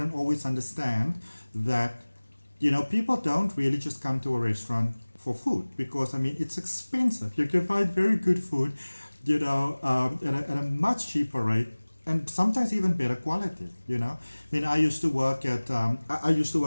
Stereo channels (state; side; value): inverted; both; correlation -1.00